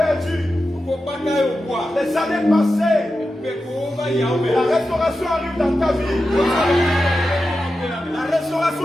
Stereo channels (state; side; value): normal; both; correlation 0.91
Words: perdu les années passées, la restauration arrive dans ta vie. La restauration